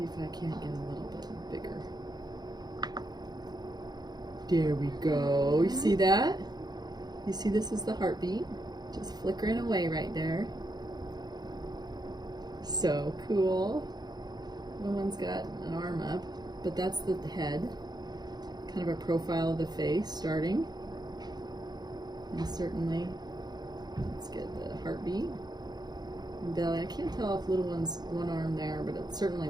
if I can't get a little bit bigger. There we go. You see that? You see this is the heartbeat? Just flickering away right there. So cool. The one's got an arm up, but that's the head. Kind of a profile of the face starting. And certainly, let's get the heartbeat. And belly. I can't tell if little one's one arm there, but it certainly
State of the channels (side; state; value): left; late; 0.20 ms